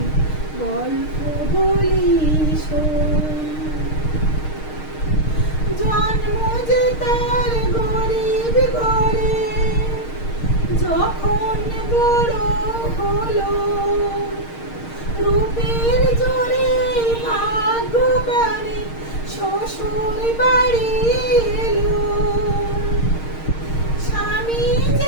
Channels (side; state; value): right; late; 6.5 ms